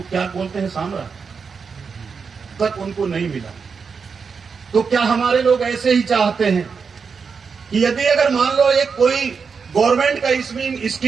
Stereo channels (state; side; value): quieter; left; 5.6 dB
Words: क्या बोलते हैं सामरा तक उनको नहीं मिला। तो क्या हमारे लोग ऐसे ही चाहते हैं कि यदि अगर मान लो एक कोई गवर्नमेंट का